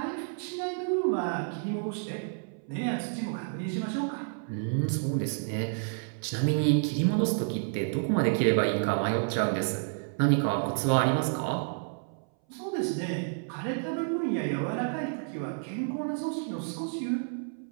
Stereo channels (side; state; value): left; silent; 58 dB below the other